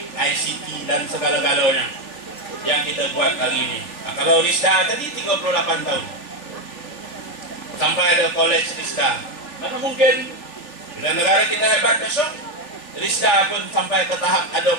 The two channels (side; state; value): right; late; 3.4 ms